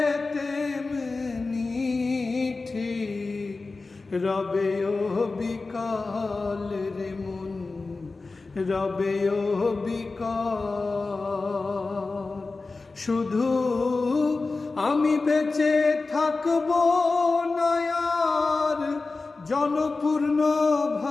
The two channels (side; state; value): right; quieter; 3.7 dB